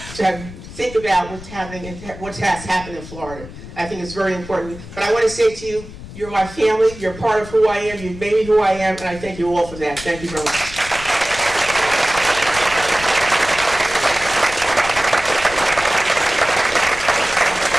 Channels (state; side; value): noise; left; rumble, 14 dB below the sound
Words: to think about what's happening and what has happened in Florida. I think it's very important. But I want to say to you, you're my family, you're part of who I am, you've made me who I am, and I thank you all for that. Thank you very much.